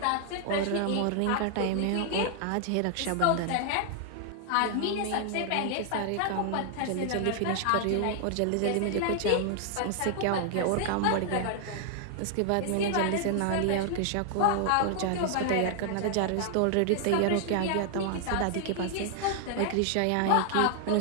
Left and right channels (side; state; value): both; different; correlation 0.00